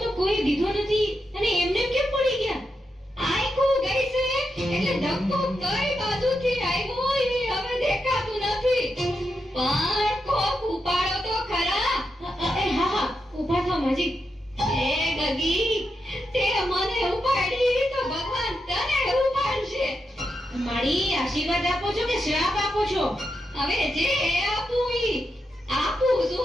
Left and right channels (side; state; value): both; normal; correlation 0.86